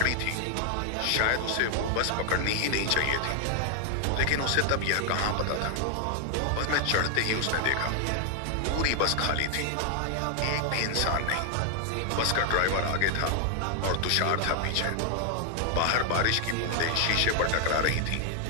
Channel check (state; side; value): different; both; correlation 0.00